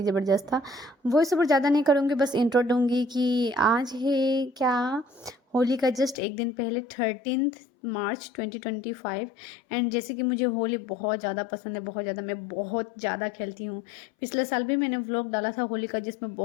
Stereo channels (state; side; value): drops out; right; at 6.2 s